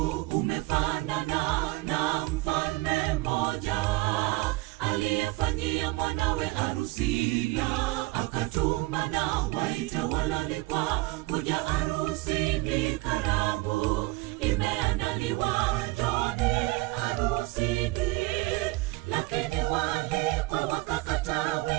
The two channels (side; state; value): left; quieter; 21.7 dB